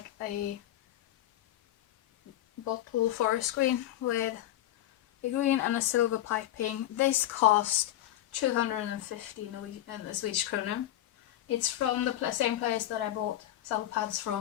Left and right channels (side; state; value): right; quieter; 13.4 dB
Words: a bottle forest screen with a green and a silver piping. This cost 250 Swedish krona. It's from the same place that I bought saddle pads